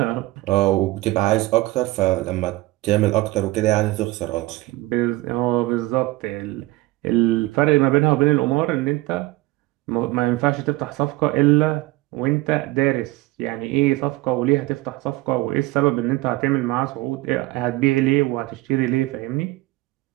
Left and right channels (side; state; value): left; quieter; 19.5 dB